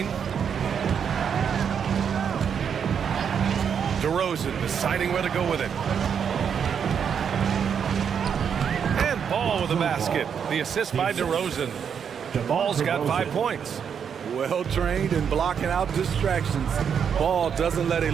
DeRozan deciding where to go with it. And Ball with a basket. The assist by DeRozan. Ball's got 5 points. Well trained in blocking out distractions. Ball doesn't let a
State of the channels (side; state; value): left; quieter; 7.4 dB